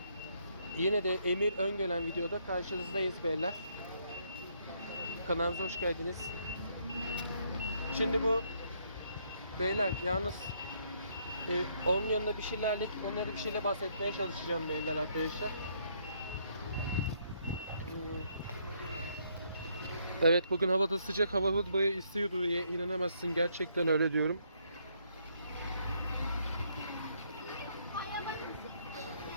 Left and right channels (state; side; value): inverted; both; correlation -0.71